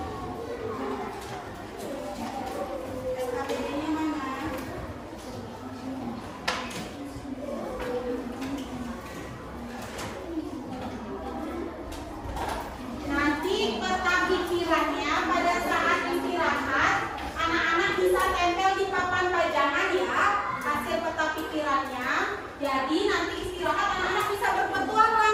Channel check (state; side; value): identical; both; correlation 1.00